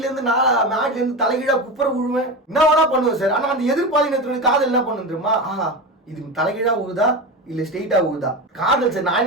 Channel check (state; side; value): normal; both; correlation 0.22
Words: இருந்து மாடில இருந்து தலைகீழா குப்புற விழுவேன், என்ன வேணா பண்ணுவேன் சார். ஆனா அந்த எதிர்பாலினத்தினுடைய காதல் என்ன பண்ணு தெரியுமா? இது தலைகீழா உழுதா இல்ல ஸ்ட்ரெயிட்டா உழுதா, காதல் சார் நான்